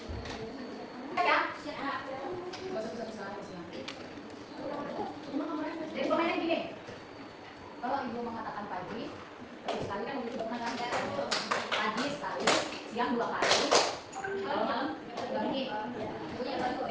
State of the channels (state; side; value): identical; both; correlation 1.00